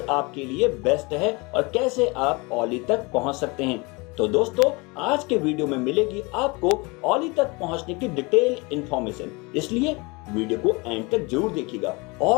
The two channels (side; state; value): right; quieter; 27.0 dB